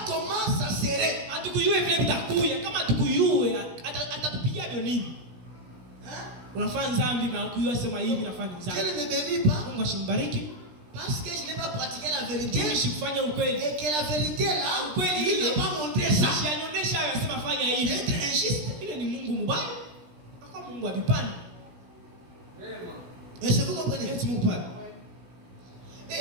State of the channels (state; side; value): late; left; 17 ms